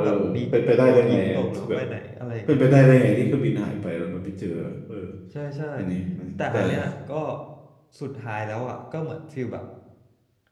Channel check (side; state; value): both; identical; correlation 1.00